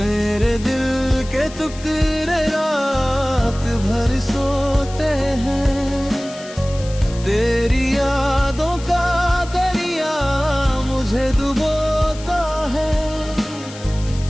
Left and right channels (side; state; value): left; noise; hiss, 17 dB below the sound